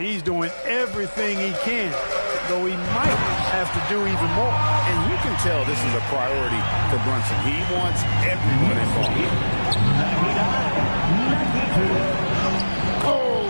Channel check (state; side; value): inverted; both; correlation -1.00